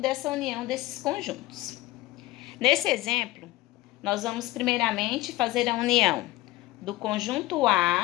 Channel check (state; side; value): quieter; right; 17.9 dB